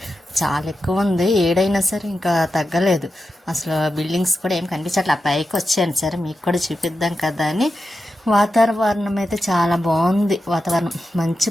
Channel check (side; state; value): both; normal; correlation 0.90